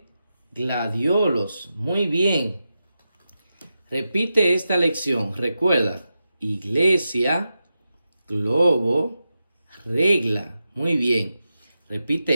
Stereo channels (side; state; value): both; inverted; correlation -0.89